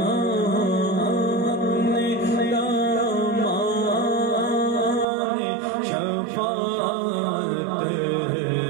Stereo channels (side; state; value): left; drops out; at 5.1 s